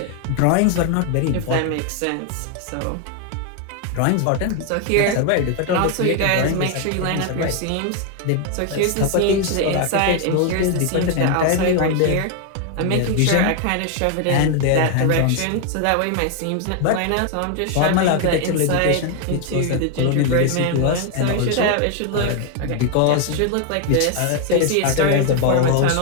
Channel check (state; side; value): different; both; correlation 0.00